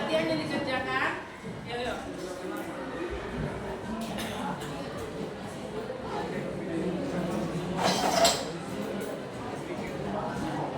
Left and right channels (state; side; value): identical; both; correlation 1.00